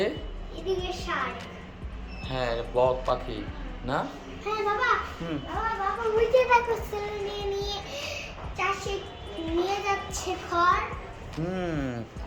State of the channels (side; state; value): both; identical; correlation 1.00